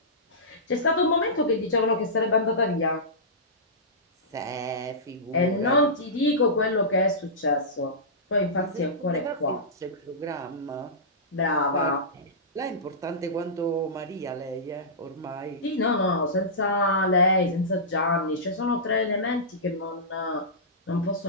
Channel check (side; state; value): both; normal; correlation -0.17